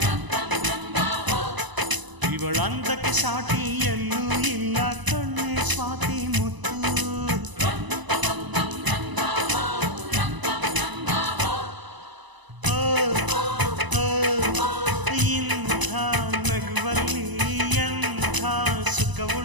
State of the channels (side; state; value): left; late; 1.0 ms